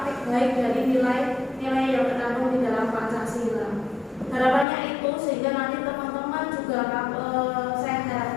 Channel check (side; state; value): right; drops out; at 4.7 s